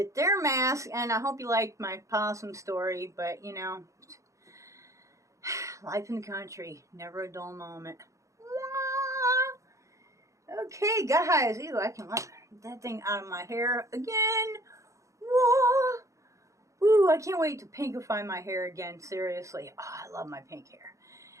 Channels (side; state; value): left; late; 0.15 ms